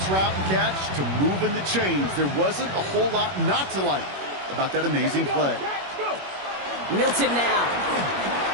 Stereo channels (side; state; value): left; late; 21 ms